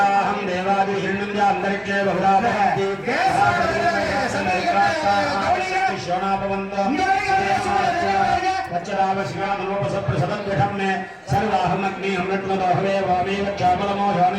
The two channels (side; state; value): both; identical; correlation 1.00